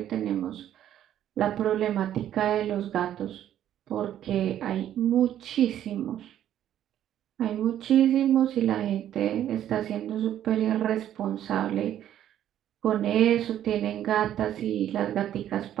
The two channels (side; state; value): left; quieter; 11.2 dB